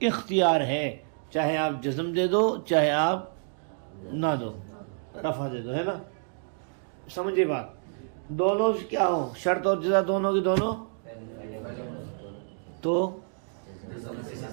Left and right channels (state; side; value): silent; left; digital silence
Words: اختیار ہے، چاہے آپ جزم دے دو چاہے آپ نہ دو، رفع دے دو، ہے نا؟ سمجھے بات؟ دونوں کیا ہو، شرط اور جزا دونوں کی دونوں، تو